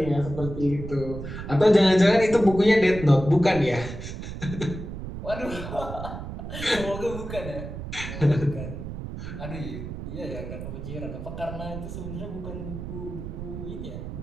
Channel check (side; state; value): right; noise; rumble, 8 dB below the sound